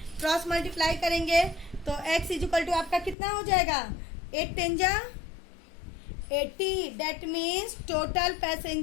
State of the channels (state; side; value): drops out; right; at 3.2 s